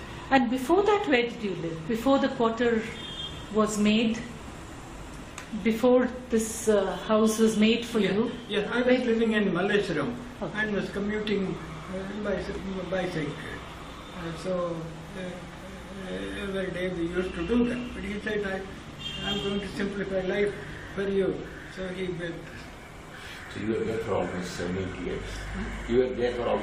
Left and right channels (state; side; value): identical; both; correlation 1.00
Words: And before that, where did you live? Before the quarter was made? Before this house was made for you? Yes, I was living in Malleshwaram and was commuting by bicycle. So every day we used to do that. But he said, I'm going to simplify life for you. So he built. So you were there for almost 7 8 years. You were there for